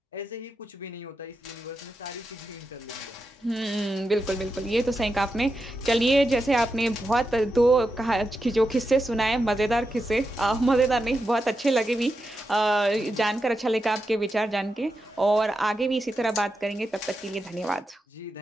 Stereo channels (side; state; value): both; normal; correlation 0.88